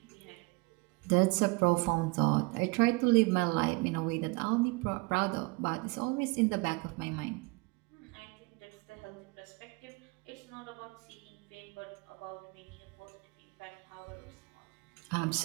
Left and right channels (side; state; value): left; quieter; 27.2 dB